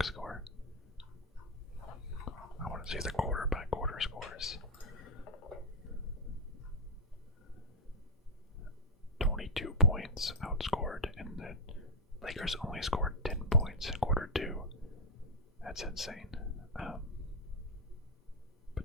score? I want to see the quarter by quarter scores. 22 points outscored, and the Lakers only scored 10 points in quarter 2. That's insane.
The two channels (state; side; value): normal; both; correlation 0.01